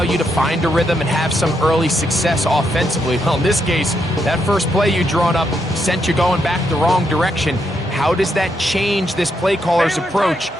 you to find a rhythm and have some early success offensively. Well, in this case, that first play you drawn up sent you going back the wrong direction. How does that change this play caller's approach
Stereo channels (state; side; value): normal; both; correlation 0.79